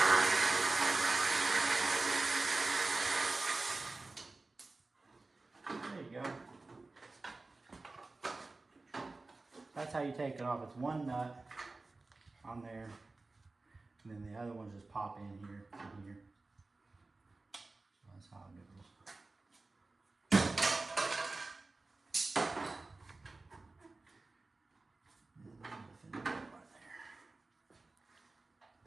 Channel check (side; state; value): left; quieter; 3.4 dB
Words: There you go. That's how you take it off. It's one nut on there, and then the other ones just pop in here and here. So that's how it goes. And then the finish right there.